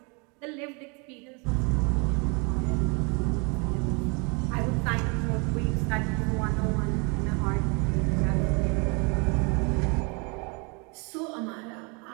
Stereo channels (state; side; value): quieter; left; 32.3 dB